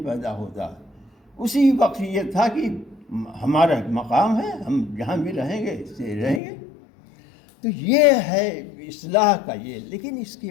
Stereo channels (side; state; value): right; drops out; at 6.4 s